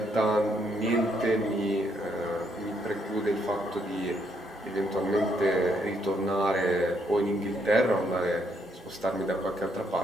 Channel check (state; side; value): normal; both; correlation 0.73